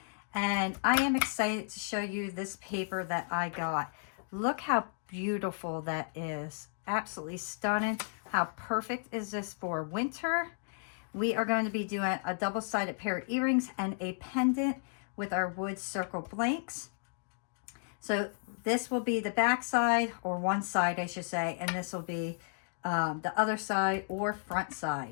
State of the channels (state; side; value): silent; right; digital silence